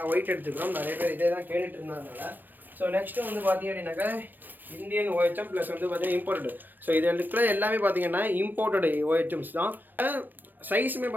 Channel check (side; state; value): left; late; 0.087 ms